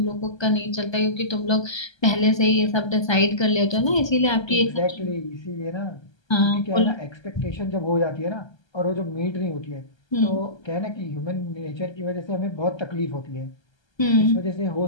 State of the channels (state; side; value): late; right; 1.3 ms